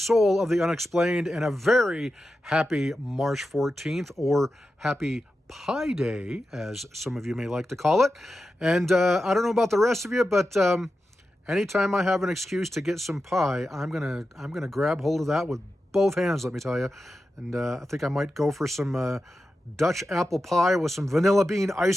of the Unexplained, and a very happy March 14th, or happy Pie Day, as some of you may like to call it. And I don't know about the rest of you, but anytime I have an excuse to get some pie, I'm gonna grab hold of that with both hands, let me tell you. And I think I might go for some Dutch apple pie with some vanilla bean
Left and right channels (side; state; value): both; normal; correlation 0.91